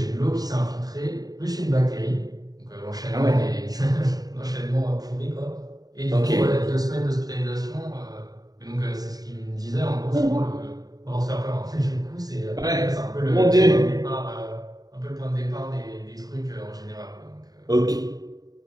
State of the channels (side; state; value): left; late; 0.18 ms